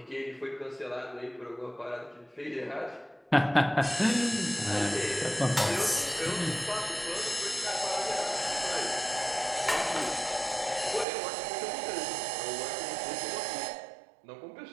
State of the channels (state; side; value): drops out; left; at 11.1 s